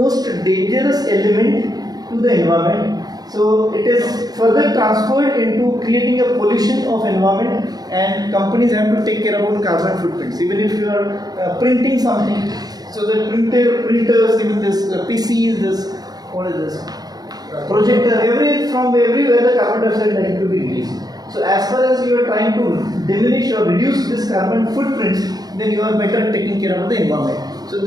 dangerous element to the environment. So it is further transferred into creating a pollution of environment, and companies have to take care about carbon footprints. Even if you are printing something, so the printers, even this PCs, this what is this projector, from everywhere the carbon dioxide is likely to be released. So as far as you are trying to diminish or reduce this carbon footprints, then you are better taking care of the environment. So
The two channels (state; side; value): late; left; 0.19 ms